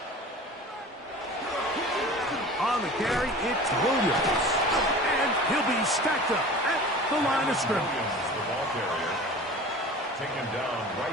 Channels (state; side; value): normal; both; correlation 0.39